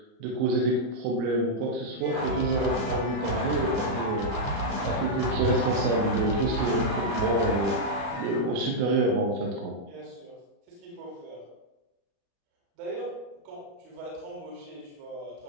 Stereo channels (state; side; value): late; left; 35 ms